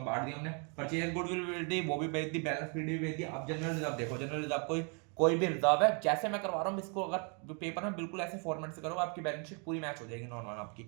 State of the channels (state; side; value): quieter; left; 37.1 dB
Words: बांट दी हमने। परचेज गुडविल भी भेज दी, वो भी भेज दी, बैलेंस शीट भी भेज दी। अब जनरल रिजर्व देखो, जनरल रिजर्व कोई भी रिजर्व है, जैसे मैं करवा रहा हूँ इसको, अगर पेपर में बिल्कुल ऐसे फॉर्मेट से करो, आपकी बैलेंस शीट पूरी मैच हो जाएगी नॉर्मल आपकी।